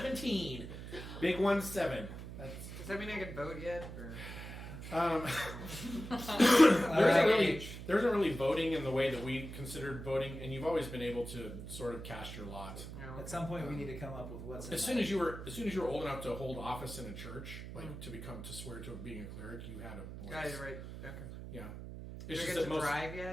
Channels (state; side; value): noise; right; hum, 10 dB below the sound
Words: Big 1-7. Does that mean I can vote yet? Or? There isn't really voting in the way that we considered voting, and you've always been able to sort of cast your lot. No. At some point, we need to come up with what's in As soon as you were old enough to hold office in a church, like to swear to being a cleric, you had a voice. Got it right. Okay. Yeah. Do It's I just get that to most. drive